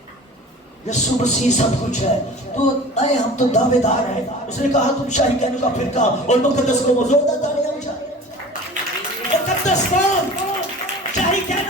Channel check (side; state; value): both; normal; correlation 0.40